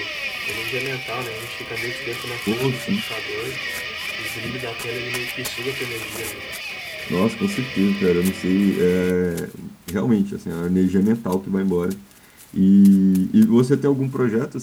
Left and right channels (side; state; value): both; identical; correlation 1.00